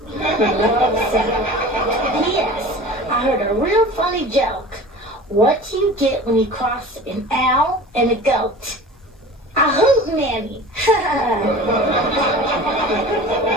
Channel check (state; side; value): normal; both; correlation 0.38